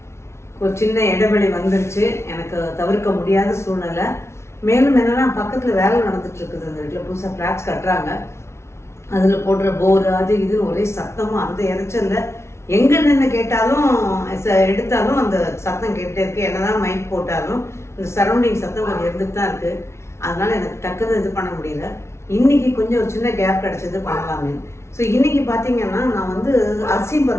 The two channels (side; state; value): right; late; 0.13 ms